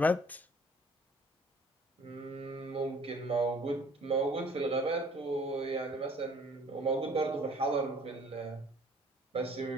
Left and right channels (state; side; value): normal; both; correlation 0.55